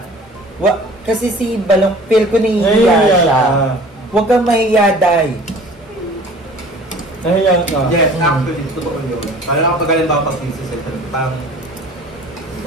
kasi si Balong, feel ko nahihiya Nahihiya siya. ka. Huwag kang mahiya, Day. Nahiya ka. Yes, actually, totoo yun. Kaya kapag halimbawa pag-thesis, parang,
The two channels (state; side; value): normal; both; correlation 0.47